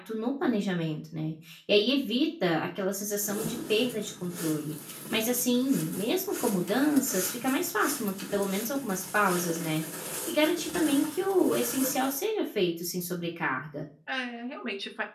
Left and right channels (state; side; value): identical; both; correlation 1.00